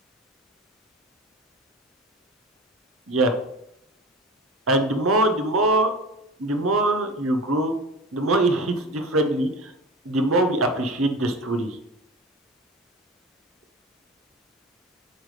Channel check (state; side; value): normal; both; correlation 0.33